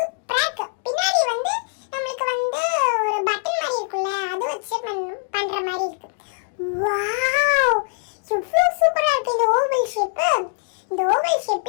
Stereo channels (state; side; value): silent; right; digital silence